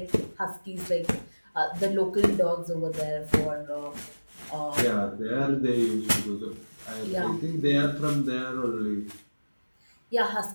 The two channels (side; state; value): both; inverted; correlation -1.00